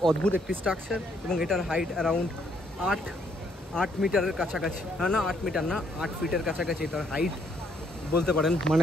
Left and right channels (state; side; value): normal; both; correlation 0.70